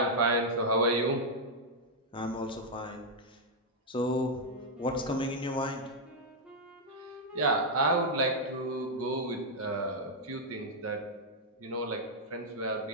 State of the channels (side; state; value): both; normal; correlation -0.03